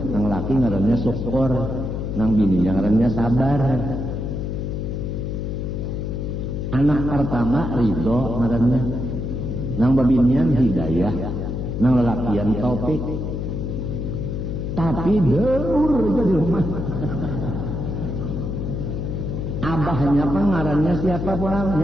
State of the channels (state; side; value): noise; left; hum, 3 dB below the sound